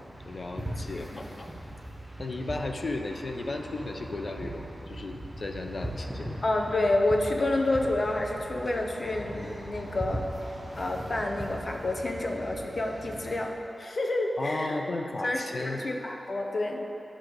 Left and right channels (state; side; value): normal; both; correlation 0.94